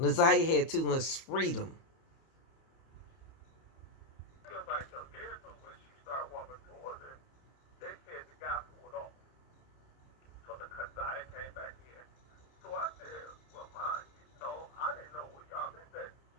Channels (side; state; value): right; late; 30 ms